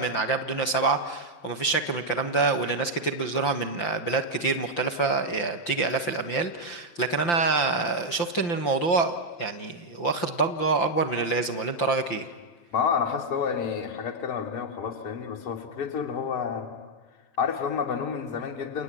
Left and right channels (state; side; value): late; right; 5.8 ms